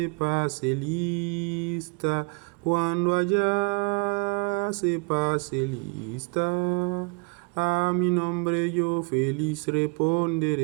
pase lista, cuando allá se pase lista, a mi nombre yo feliz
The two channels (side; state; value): left; quieter; 34.5 dB